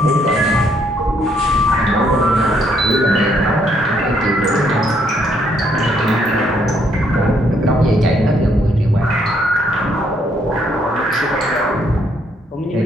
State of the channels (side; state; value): both; normal; correlation 0.70